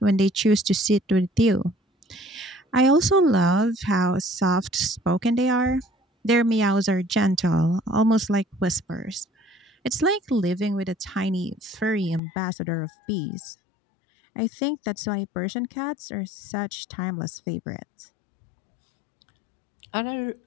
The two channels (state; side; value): drops out; right; at 12.2 s